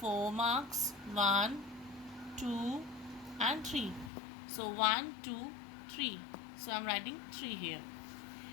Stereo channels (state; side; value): drops out; right; at 4.1 s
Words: marks? 1, 2 and 3. So 1, 2, 3. So I am writing 3 here.